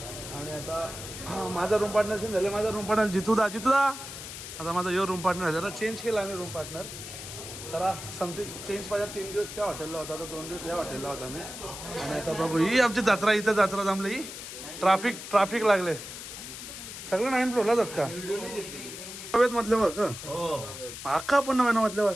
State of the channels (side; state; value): left; noise; hiss, 10 dB below the sound